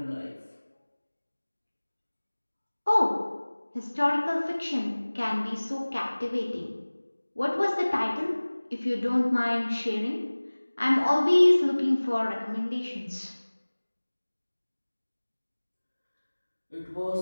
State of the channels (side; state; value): both; inverted; correlation -1.00